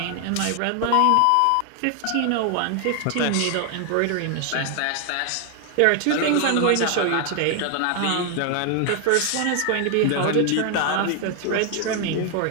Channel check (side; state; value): both; different; correlation 0.00